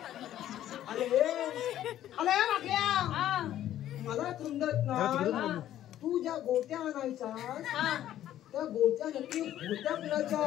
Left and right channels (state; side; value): quieter; right; 12.2 dB